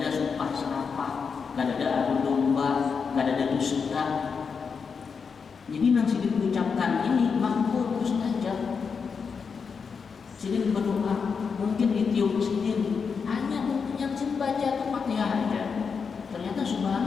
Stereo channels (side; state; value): right; quieter; 5.7 dB